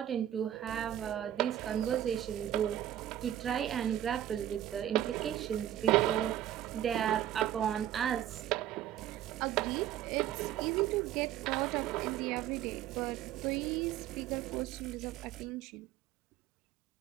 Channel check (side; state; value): left; quieter; 11.8 dB